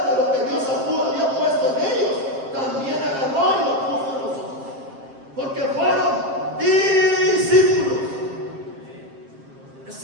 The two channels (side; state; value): left; late; 7.5 ms